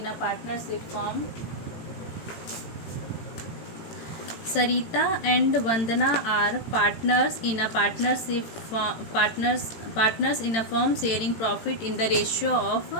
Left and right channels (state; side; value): late; right; 18 ms